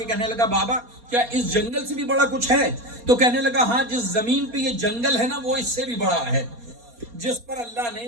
کہنے لگا بابا کیا اس جنگل سے بھی بڑا کچھ ہے؟ تو کہنے لگا ہاں، جس زمین پہ یہ جنگل ہے نا وہ اس سے بھی بڑا ہے، جس پر اللہ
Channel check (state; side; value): late; left; 4.2 ms